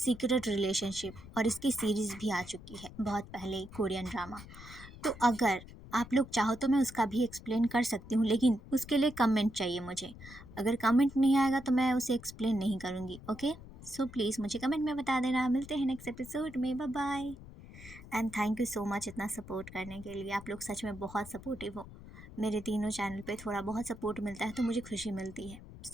रिलेशनशिप, और इसकी सीरीज़ भी आ चुकी है बहुत पहले, कोरियन ड्रामा। तो अगर आप लोग चाहो तो मैं उसका भी एक्सप्लेन कर सकती हूँ, लेकिन उसके लिए कमेंट चाहिए मुझे। अगर कमेंट नहीं आएगा तो मैं उसे एक्सप्लेन नहीं करूँगी। ओके, सो प्लीज़ मुझे कमेंट में बता देना। मिलते हैं नेक्स्ट एपिसोड में। Bye bye. And thank you so much इतना सपोर्ट करने के लिए। आप लोग सच में बहुत सपोर्टिव हो। मेरे तीनों चैनल पे थोड़ा बहुत सपोर्ट मिलता है तो मुझे खुशी मिलती है।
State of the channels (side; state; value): left; noise; rumble, 16 dB below the sound